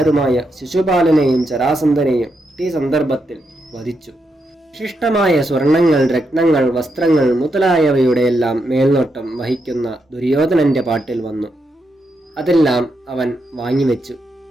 ശിശുപാലനെയും ജരാസന്ധനെയും ഈ സന്ദർഭത്തിൽ വധിച്ചു. വിശിഷ്ടമായ സ്വർണങ്ങൾ, രത്നങ്ങൾ, വസ്ത്രങ്ങൾ മുതലായവയുടെയെല്ലാം മേൽനോട്ടം വഹിക്കുന്ന ദുര്യോധനന്റെ പാട്ടിൽ വന്നു. അതെല്ലാം അവൻ വാങ്ങിവെച്ചു.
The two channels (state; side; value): normal; both; correlation 0.82